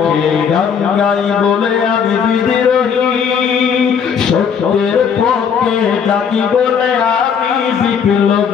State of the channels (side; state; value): right; quieter; 7.0 dB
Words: গান গাই বলে আমি বিদ্রোহী, সত্যের পক্ষে ডাকি বলে আমি